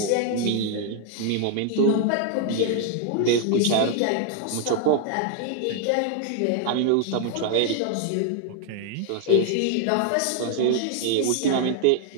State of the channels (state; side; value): different; both; correlation 0.00